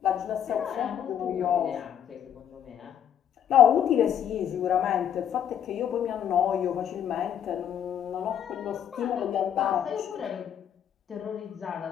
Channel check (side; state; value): right; quieter; 9.4 dB